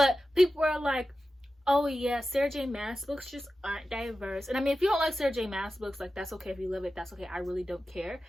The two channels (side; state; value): both; normal; correlation 0.93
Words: people are like, oh yeah, Sarah J Maas books just aren't diverse. And I mean, if you don't like Sarah J Maas books, like that's okay. If you love it, that's okay. I really don't care.